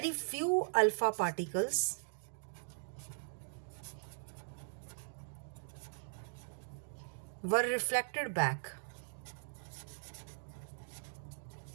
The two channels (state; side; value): silent; left; digital silence